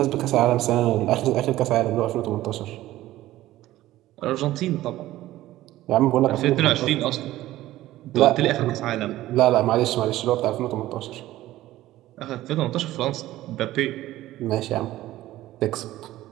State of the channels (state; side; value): quieter; left; 15.5 dB